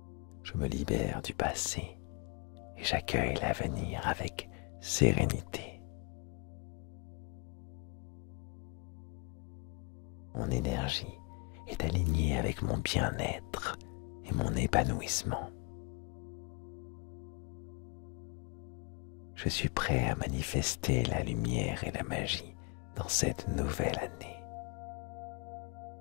Je me libère du passé et j'accueille l'avenir avec sérénité. Mon énergie est alignée avec mon bien-être et mon épanouissement. Je suis prêt à manifester la lumière et la magie dans cette nouvelle année.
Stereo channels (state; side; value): quieter; right; 27.9 dB